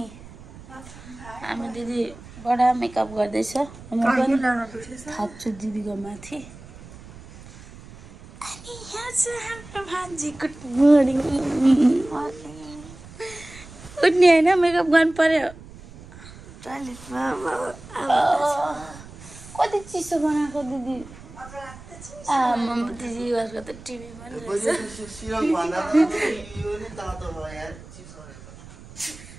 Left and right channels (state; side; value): noise; right; rumble, 18 dB below the sound